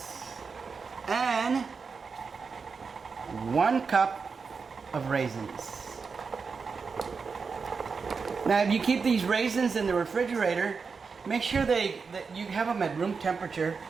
and 1 cup of raisins. Now, if you keep these raisins in the refrigerator, make sure that you have them at room temperature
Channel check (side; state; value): left; quieter; 5.2 dB